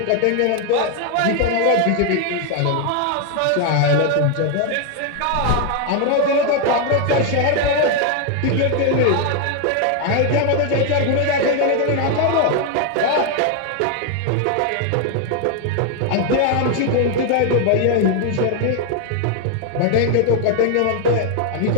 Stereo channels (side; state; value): both; different; correlation 0.01